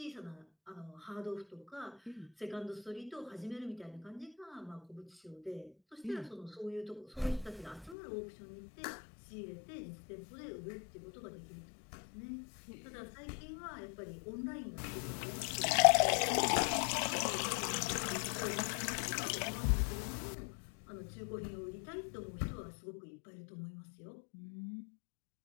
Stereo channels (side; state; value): right; drops out; at 8.0 s